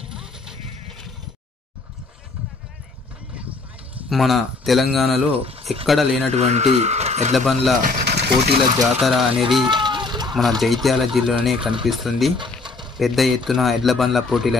మన తెలంగాణలో ఎక్కడ లేనటువంటి ఎడ్లబండ్ల పోటీల జాతర అనేది మన జైత్యాల జిల్లాలోనే కనిపిస్తుంది। పెద్ద ఎత్తున ఎడ్లబండ్ల పోటీలు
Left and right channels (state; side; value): quieter; right; 3.7 dB